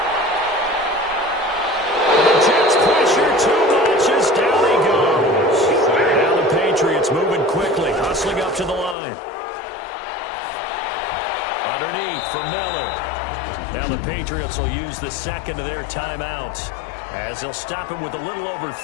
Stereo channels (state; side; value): drops out; right; at 9.0 s